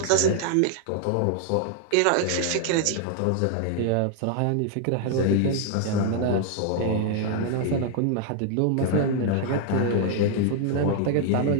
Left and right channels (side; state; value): both; different; correlation 0.00